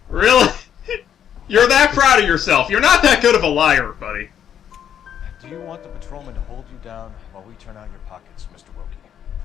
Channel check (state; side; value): quieter; right; 9.2 dB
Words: Really? You're that proud of yourself. You're not that good of a liar, buddy. Do you want the patrolman to hold you down while we turn out your pockets, Mr. Wilkie?